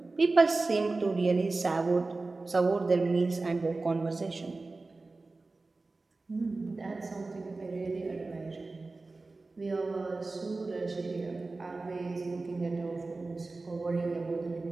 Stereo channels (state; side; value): quieter; left; 3.5 dB